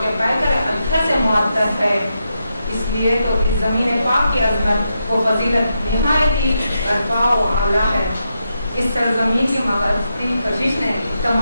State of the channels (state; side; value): inverted; both; correlation -0.85